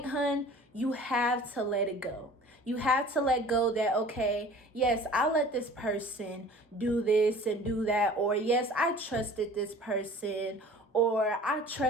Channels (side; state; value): both; normal; correlation 0.45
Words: hun, you have to let it go. You have to let go that, okay, yes, I let this person do this and do that, or yes, I trusted this person, or I